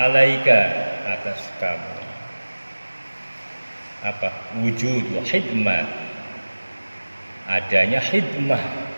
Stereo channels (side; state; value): both; inverted; correlation -1.00